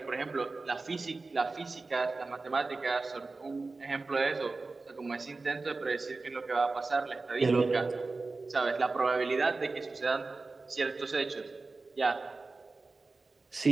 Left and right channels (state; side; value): quieter; left; 3.7 dB